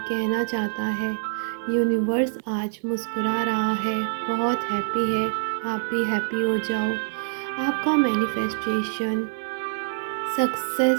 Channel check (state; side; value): silent; left; 62 dB below the other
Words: चाहता है, यूनिवर्स आज मुस्कुरा रहा है, बहुत हैप्पी है। आप भी हैप्पी हो जाओ। आपका मैनिफेस्टेशन